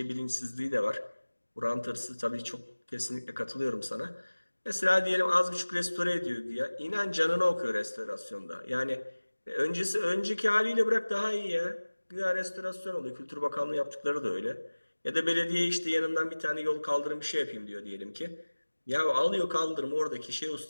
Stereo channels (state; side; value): inverted; both; correlation -1.00